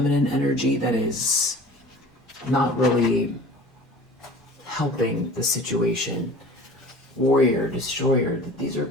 energy that is not really helping the situation. Warrior, destroyer. These are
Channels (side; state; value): both; normal; correlation 0.43